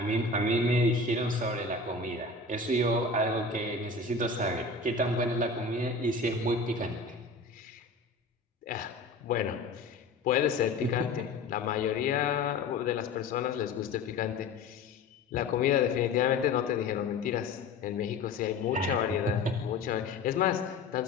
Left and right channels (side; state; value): right; quieter; 3.7 dB